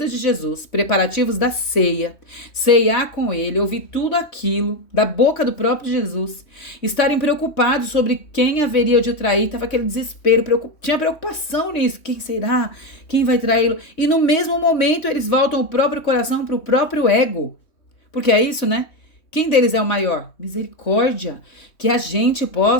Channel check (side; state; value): right; late; 3.2 ms